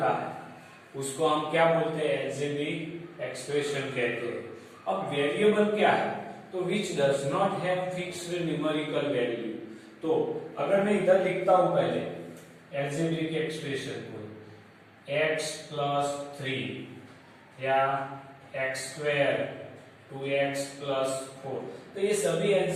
है उसको हम क्या बोलते हैं? एल्जेब्रिक एक्सप्रेशन कहते हैं। अब वेरिएबल क्या है? तो which does not have fixed numerical value. तो अगर मैं इधर लिखता हूं पहले एल्जेब्रिक एक्सप्रेशन को x प्लस 3 या x स्क्वायर 2x प्लस 4, तो ये सभी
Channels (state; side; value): identical; both; correlation 1.00